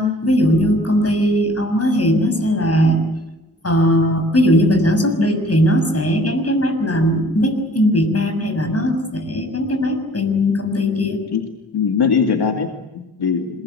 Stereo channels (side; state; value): both; normal; correlation 0.52